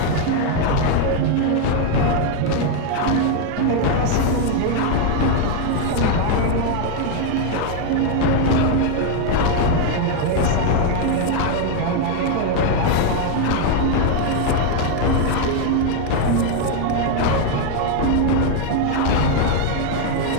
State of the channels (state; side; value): different; both; correlation 0.01